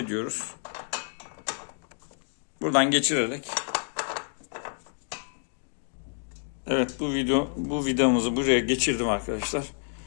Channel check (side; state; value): right; silent; digital silence